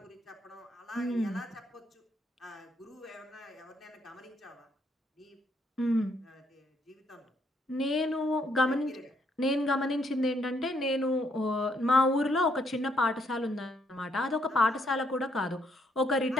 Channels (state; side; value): normal; both; correlation 0.72